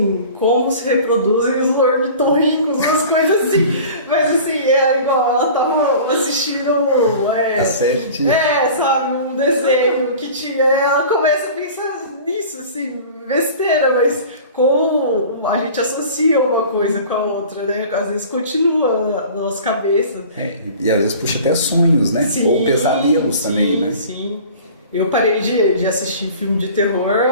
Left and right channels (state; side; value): inverted; both; correlation -0.42